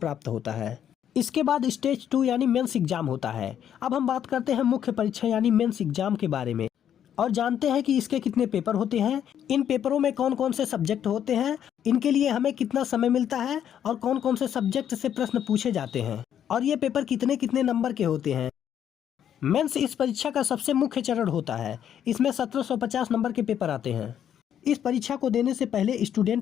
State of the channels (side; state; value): right; quieter; 9.6 dB